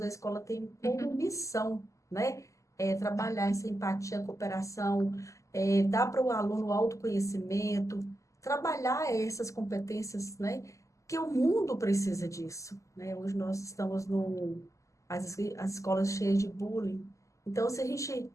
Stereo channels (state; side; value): late; right; 0.16 ms